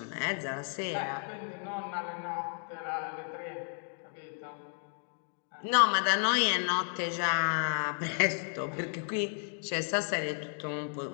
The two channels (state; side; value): silent; right; 56 dB below the other